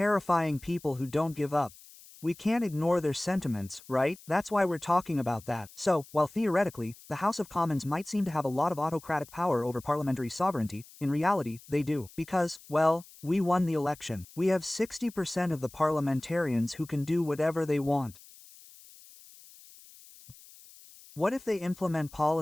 people who don't give up. We can't ignore their sentiments, right? That's why we're talking about that. So, while theoretically, the House of Commons might seem to have a lot of autocratic power over parliamentary sovereignty, in reality, they do. Because, well, we won the election. We have 60% of the parliamentarians who can do whatever they want. What if they implement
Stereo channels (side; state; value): left; noise; hiss, 22 dB below the sound